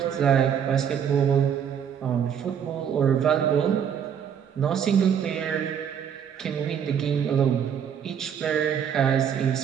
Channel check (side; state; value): left; quieter; 8.2 dB